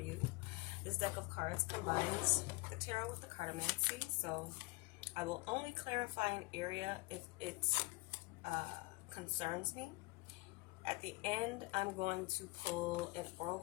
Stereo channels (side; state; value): right; quieter; 24.9 dB